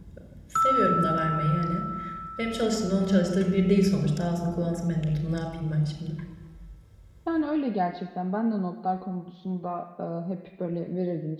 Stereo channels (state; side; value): identical; both; correlation 1.00